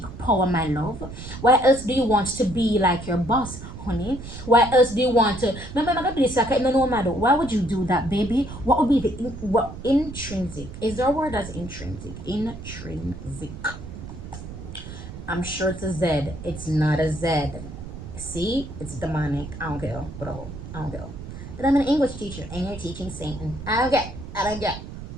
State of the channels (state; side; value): noise; right; rumble, 11 dB below the sound